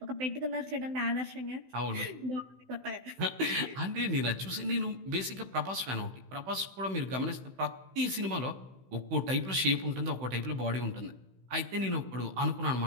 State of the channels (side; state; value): left; late; 16 ms